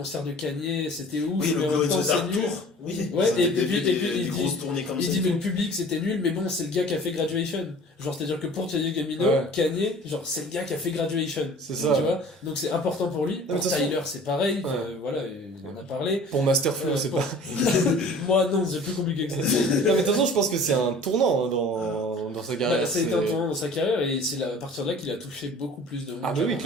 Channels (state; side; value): normal; both; correlation 0.46